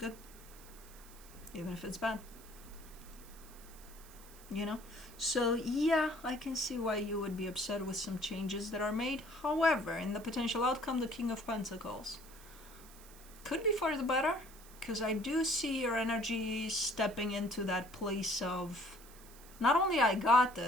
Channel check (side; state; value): right; noise; hiss, 20 dB below the sound